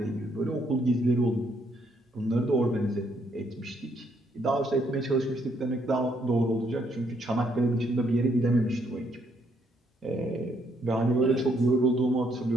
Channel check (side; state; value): both; normal; correlation 0.71